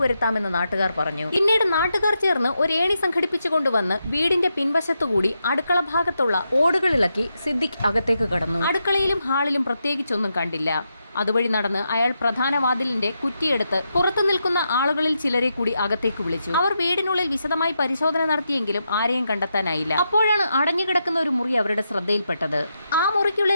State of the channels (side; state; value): both; inverted; correlation -0.84